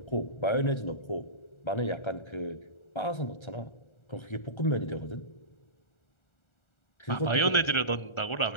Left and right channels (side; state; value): right; late; 1.4 ms